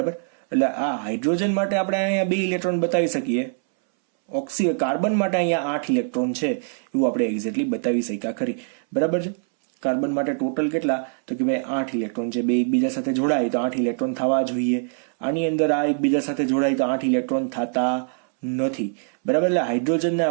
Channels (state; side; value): silent; left; 63 dB below the other